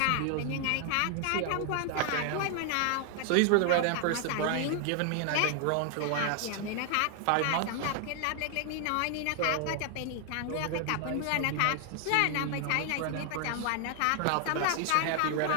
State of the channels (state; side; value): different; both; correlation 0.00